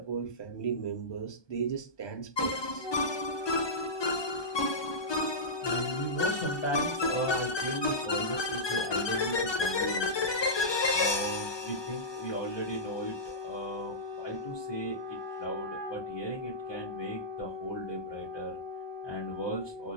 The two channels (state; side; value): late; right; 1.2 ms